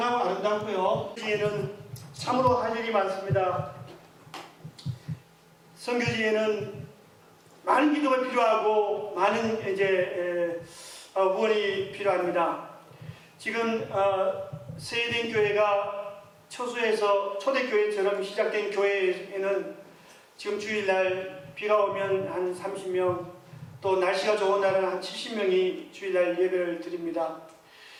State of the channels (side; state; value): both; identical; correlation 1.00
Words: 아름답고요. 여기에는 참으로 할 일이 많습니다. 선교지에는 많은 기도가 필요하고 많은 이제 후원이 필요합니다. 지금 세대인 교회가 처소에서 초대교회처럼 시작된 교회에는 지금 주일날 비가 오면 한 30명, 또 날씨가 좋은 날은 한 70명이 주일날 예배를 드립니다.